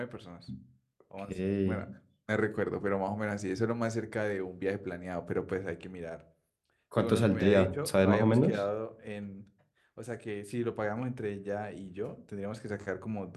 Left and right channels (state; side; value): identical; both; correlation 1.00